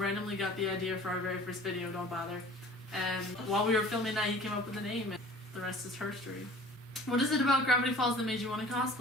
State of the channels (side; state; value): both; normal; correlation 0.47